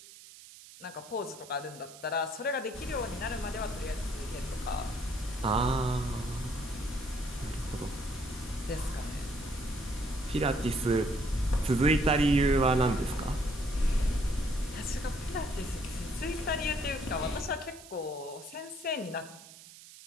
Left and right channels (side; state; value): right; noise; hiss, 18 dB below the sound